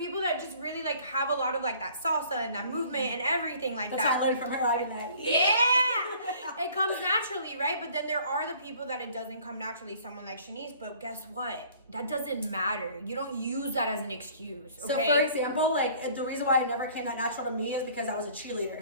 that just really like have a lot of like that salsa and that movement and everything like That's that. what I learned from her. I did that. Yeah, it comes naturally, right? But then there are the people that it doesn't come naturally. Someone like Shanice, but guess what? That doesn't matter. You don't use that as an excuse. Okay? So for example, like the reason why it never came that natural to me is because I was a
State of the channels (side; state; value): both; inverted; correlation -0.54